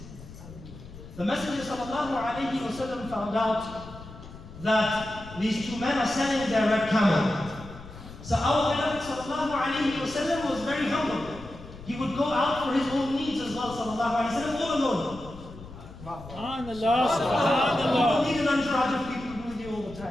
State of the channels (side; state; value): left; noise; rumble, 16 dB below the sound